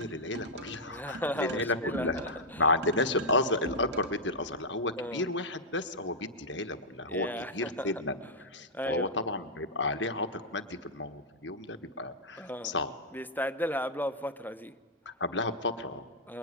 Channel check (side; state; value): both; normal; correlation -0.04